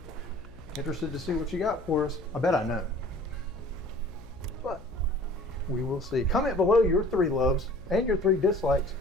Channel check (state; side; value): noise; left; hum, 20 dB below the sound